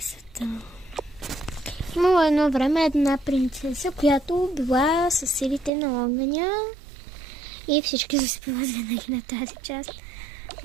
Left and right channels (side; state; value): left; drops out; at 5.7 s